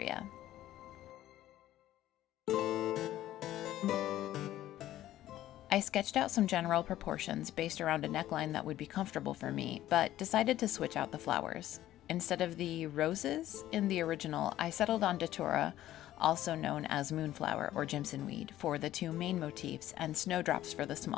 I I sketched out some general proportions based around a neckline that would be comfortable for me, but decided to switch out the flowers. Instead of the roses in the original, I settled on datura, also known as moonflower or Jimson weed, for the two main motifs and snowdrops for the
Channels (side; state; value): right; quieter; 13.7 dB